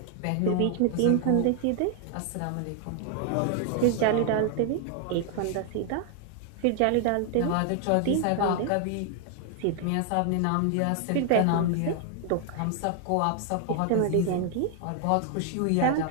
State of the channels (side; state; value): both; different; correlation 0.00